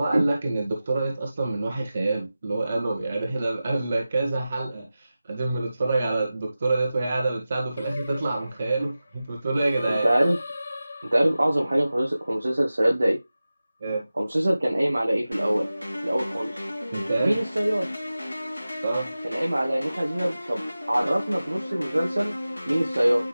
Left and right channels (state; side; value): inverted; both; correlation -0.95